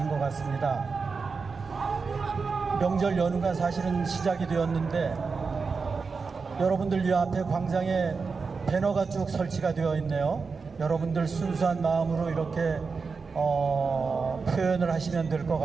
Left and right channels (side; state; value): left; quieter; 4.8 dB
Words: 것 같습니다. 명절 연휴가 사실은 시작이 되었는데 여러분들 이 앞에 광장에 배너가 쭉 설치가 되어 있네요. 여러분들 순수한 마음으로 이렇게 표현을 하시면 될 것